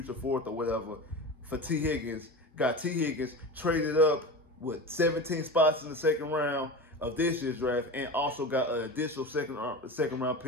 fourth or whatever for T. Higgins. Got T. Higgins traded up with 17 spots in the second round of this year's draft, and also got an additional second round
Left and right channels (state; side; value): normal; both; correlation 0.28